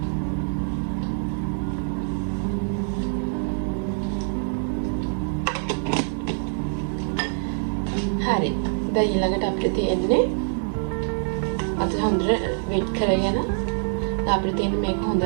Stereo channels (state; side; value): silent; left; 62 dB below the other